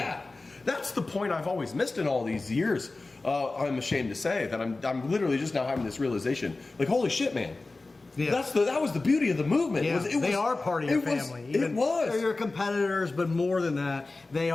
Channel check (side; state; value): right; quieter; 3.4 dB